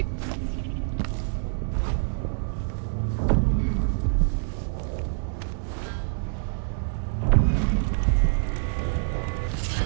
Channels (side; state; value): left; silent; digital silence